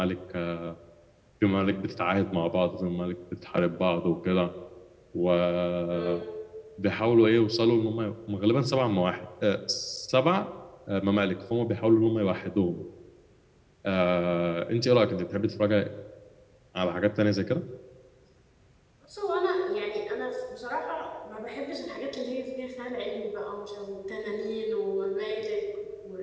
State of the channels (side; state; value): both; identical; correlation 1.00